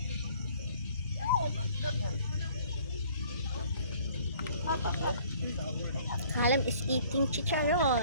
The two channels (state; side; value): inverted; both; correlation -0.55